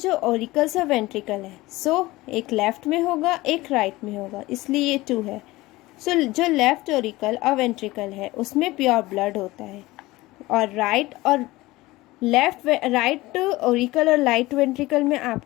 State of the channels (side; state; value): right; quieter; 19.5 dB